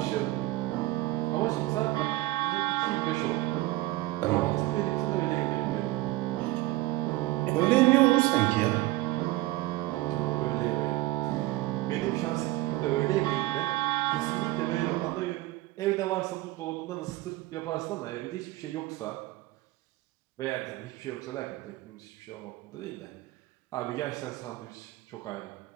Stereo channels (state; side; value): quieter; left; 18.5 dB